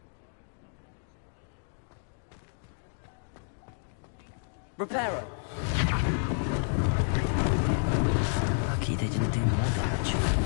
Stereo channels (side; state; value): right; silent; digital silence